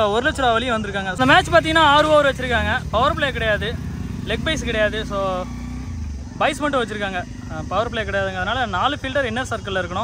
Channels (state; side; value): identical; both; correlation 1.00